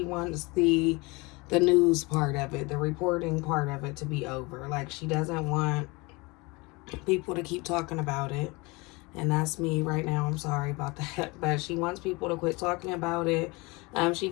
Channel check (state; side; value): quieter; right; 25.6 dB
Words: wants the news part of it, the reporting part of it to be over. Like she doesn't want people to keep talking about it. And that's me right now. I'm sorry about that. But she wants people to quit talking about it. She